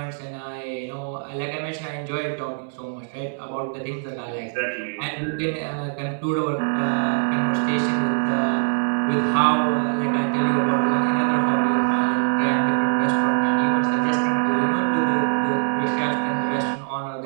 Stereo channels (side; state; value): left; silent; 63 dB below the other